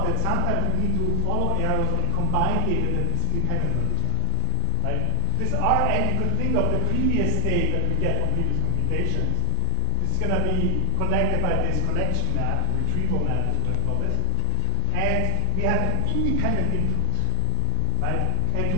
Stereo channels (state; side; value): different; both; correlation 0.00